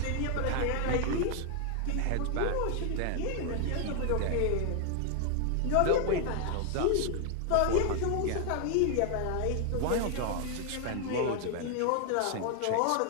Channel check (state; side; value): different; both; correlation 0.00